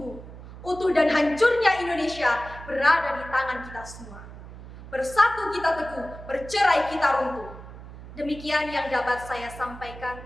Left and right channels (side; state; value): right; noise; hum, 15 dB below the sound